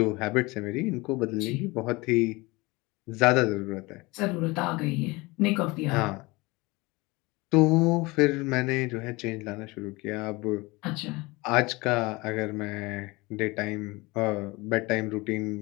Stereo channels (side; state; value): right; quieter; 23.5 dB